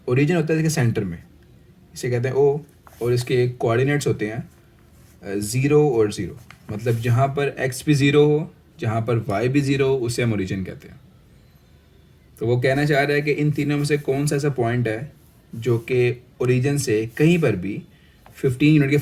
ओरिजिन होता है इसके सेंटर में, इसे कहते हैं ओ, और इसके कोऑर्डिनेट्स होते हैं 0 और 0। मतलब जहाँ पर x भी 0 हो, जहाँ पर y भी 0 हो, उसे हम ओरिजिन कहते हैं। तो वो कहना चाह रहा है कि इन तीनों में से कौन सा ऐसा पॉइंट है जो कि ओरिजिन से कहीं पर भी 15 यूनिट के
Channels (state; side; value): identical; both; correlation 1.00